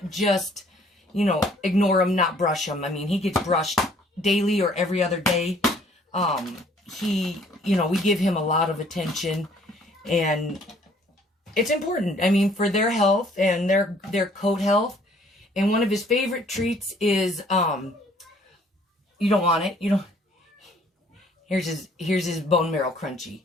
just, you know, ignore him, not brush him. I mean, he gets brushed daily or every other day. You know, we give him a lot of attention. And it's important, I mean, for their health and their coat health. And one of his favorite treats is, you don't want it, you don't. Here's his bone marrow crunchy.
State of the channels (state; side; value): normal; both; correlation 0.59